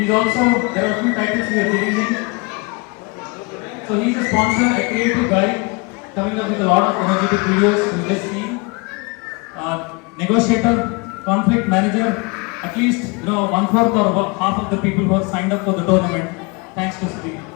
also, there are a few titles we are giving him. So he's a sponsor, a creative guy, coming up with a lot of energetic videos we just seen. Negotiator, conflict manager, at least 1/4 or half of the people who have signed up for the tournament. Thanks to Sudhir.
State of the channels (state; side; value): quieter; right; 29.1 dB